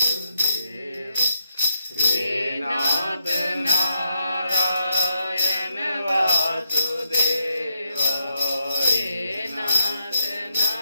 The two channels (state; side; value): inverted; both; correlation -0.81